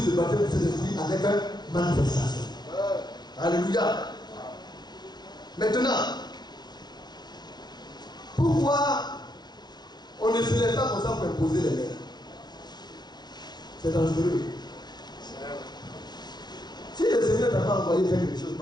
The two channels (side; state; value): right; late; 0.20 ms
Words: le baptême du Saint-Esprit avec une manifestation. Alléluia. Maintenant, pourquoi on ne se lève pas comme ça pour imposer les mains? C'est dangereux. Si le Seigneur n'a pas envoyé faire quelque chose,